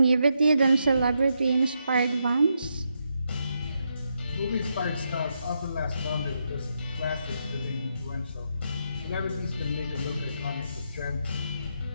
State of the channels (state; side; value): inverted; both; correlation -0.81